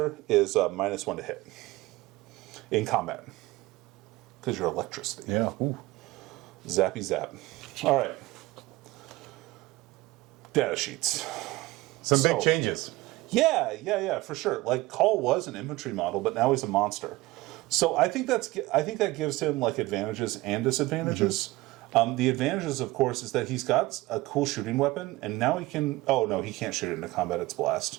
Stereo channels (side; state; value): left; quieter; 19.7 dB